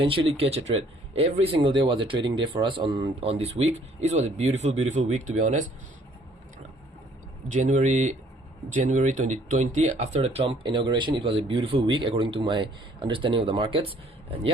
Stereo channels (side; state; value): both; normal; correlation 0.61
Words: catch a trade. Every single day was a trading day for us on this week. It was a beautiful week, to be honest. January 2020, after the Trump inauguration, it was a beautiful week according to my understanding of the markets. And